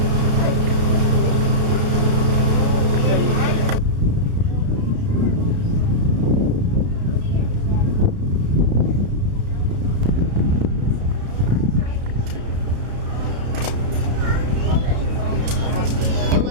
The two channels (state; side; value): late; left; 33 ms